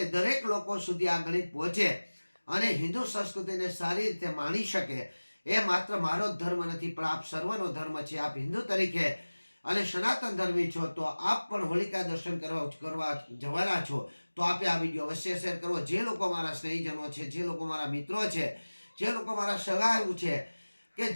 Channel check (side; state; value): both; inverted; correlation -1.00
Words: દરેક લોકો સુધી આ ગણિત પહોંચે અને હિન્દુ સંસ્કૃતિને સારી રીતે માણી શકે એ માત્ર મારો જ ધર્મ નથી પણ આપ સર્વનો ધર્મ છે. આપ હિન્દુ તરીકે અને સનાતન ધર્મી છો તો આપ પણ હોલિકા દર્શન કરવા જવાના છો. તો આપે આ વિડીયો અવશ્ય શેર કરવો. જે લોકો મારા સ્નેહીજનો છે, જે લોકો મારા મિત્રો છે, જે લોકો મારા સગાઓ છે, કે